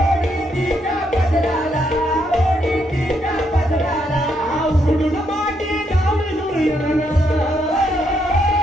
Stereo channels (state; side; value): normal; both; correlation 0.76